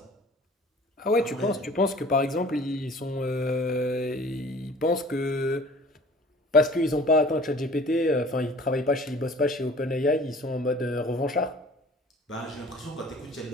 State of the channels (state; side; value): normal; both; correlation 0.48